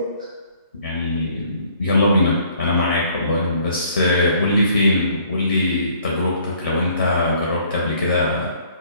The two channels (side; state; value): both; inverted; correlation -0.60